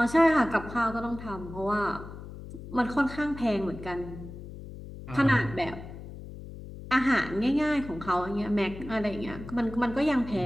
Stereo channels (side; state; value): left; noise; hum, 13 dB below the sound